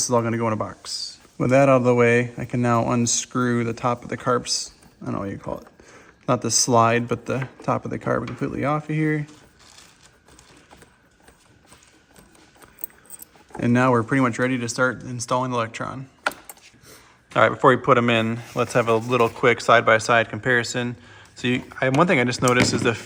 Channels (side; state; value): both; identical; correlation 1.00